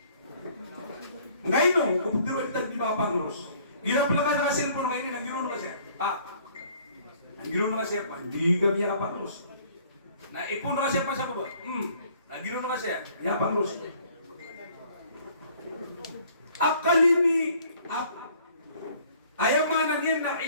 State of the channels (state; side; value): inverted; both; correlation -0.58